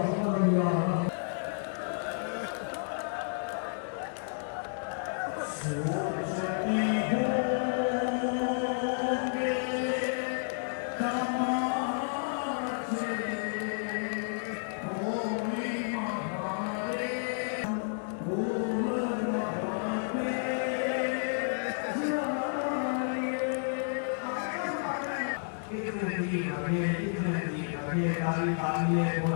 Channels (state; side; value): silent; right; digital silence